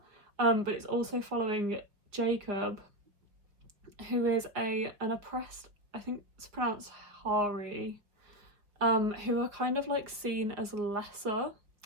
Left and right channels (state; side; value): late; left; 4.7 ms